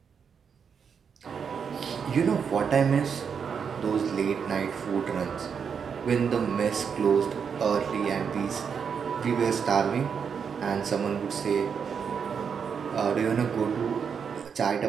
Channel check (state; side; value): quieter; left; 6.7 dB